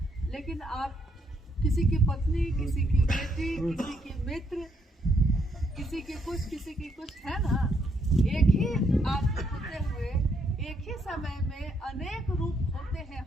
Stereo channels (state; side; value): normal; both; correlation 0.73